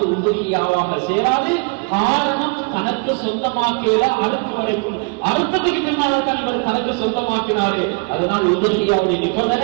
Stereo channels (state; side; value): quieter; left; 32.7 dB